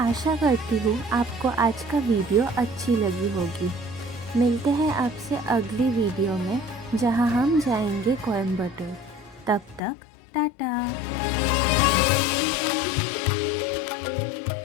करती हूँ आपको आज का वीडियो अच्छी लगी होगी। मिलते हैं आपसे अगली वीडियो में जहाँ हम जाएंगे कोयम्बटूर। तब तक टाटा।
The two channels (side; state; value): right; drops out; at 9.8 s